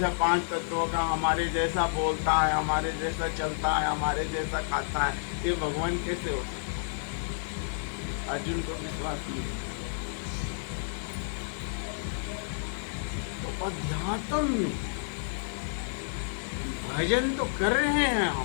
5 तत्वों का, हमारे जैसा बोलता है, हमारे जैसा चलता है, हमारे जैसा खाता है, ये भगवान कैसे हो सकता? अर्जुन को विश्वास नहीं। तो अध्यात्म में भजन तो कर रहे हैं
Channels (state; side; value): silent; right; 58 dB below the other